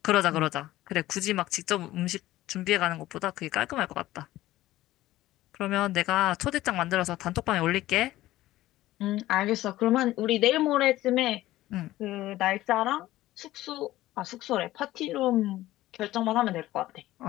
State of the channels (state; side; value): quieter; right; 15.9 dB